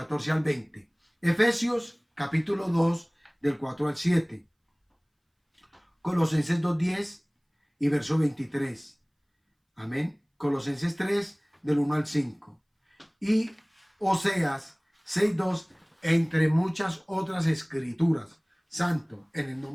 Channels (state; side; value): identical; both; correlation 1.00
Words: al 20. Efesios, capítulo 2, del 4 al 7. Colosenses 2:10 y verso 23. Amén. Colosenses 3, del 1 al 5. Y Oseas 6:2, entre muchas otras escrituras. Santo, en el